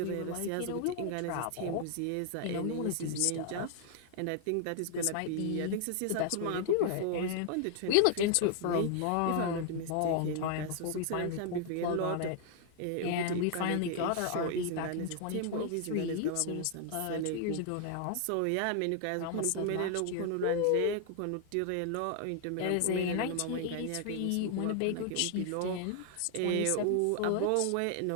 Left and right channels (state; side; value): different; both; correlation 0.00